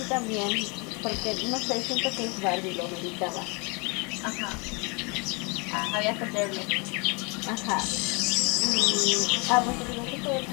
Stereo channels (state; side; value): quieter; right; 32.1 dB